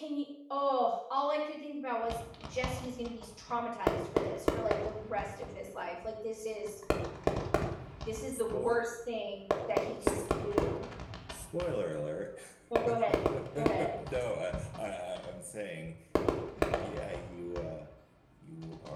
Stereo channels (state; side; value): identical; both; correlation 1.00